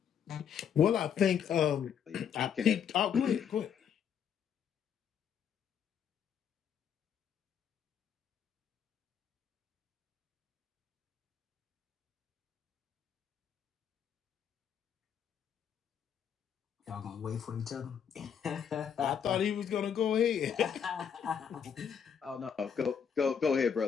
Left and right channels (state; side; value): quieter; right; 7.9 dB